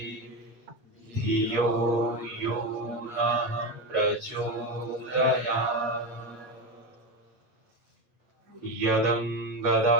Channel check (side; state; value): left; late; 9.6 ms